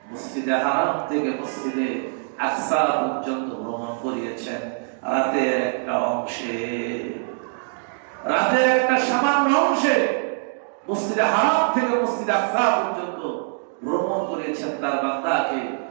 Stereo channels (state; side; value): silent; left; digital silence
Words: মসজিদে হারাম থেকে মসজিদে আকসা পর্যন্ত ভ্রমণ করিয়েছেন। রাতের একটা সামান্য অংশে মসজিদে হারাম থেকে মসজিদে আকসা পর্যন্ত ভ্রমণ করিয়েছেন তার বান্দাকে।